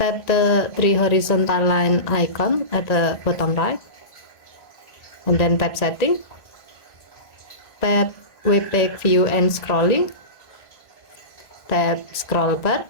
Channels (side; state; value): right; late; 1.9 ms